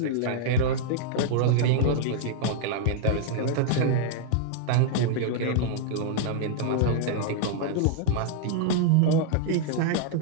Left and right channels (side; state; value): both; different; correlation -0.01